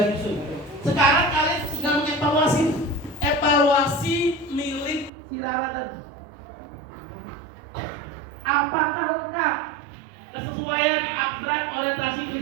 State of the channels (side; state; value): left; drops out; at 5.1 s